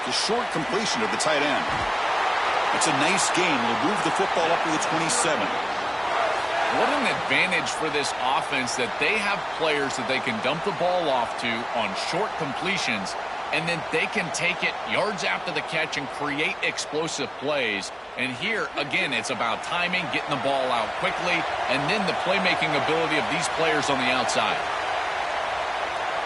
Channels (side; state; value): both; identical; correlation 1.00